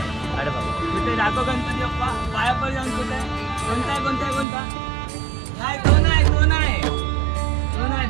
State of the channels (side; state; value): left; drops out; at 4.5 s